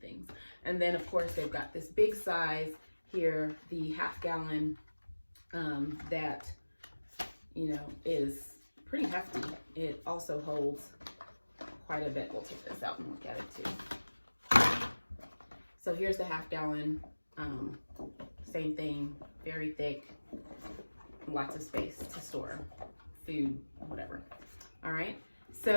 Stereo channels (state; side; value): inverted; both; correlation -1.00